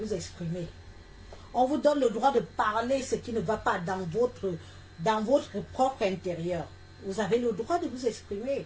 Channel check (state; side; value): identical; both; correlation 1.00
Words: exprimer. On vous donne le droit de parler ce qui ne va pas dans votre propre intérieur. Vous avez le droit de vous exprimer.